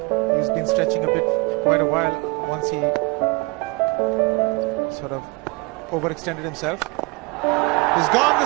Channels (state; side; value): quieter; left; 26.3 dB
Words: He's been stretching a bit for quite a while once he sort of overextended himself. He's gone the